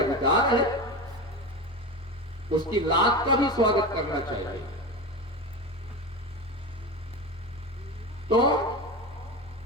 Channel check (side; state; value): both; normal; correlation 0.24